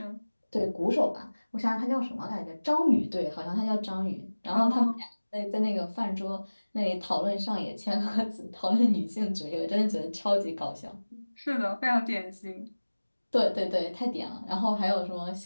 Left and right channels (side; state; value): both; inverted; correlation -1.00